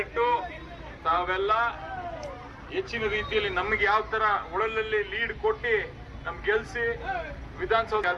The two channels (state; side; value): identical; both; correlation 1.00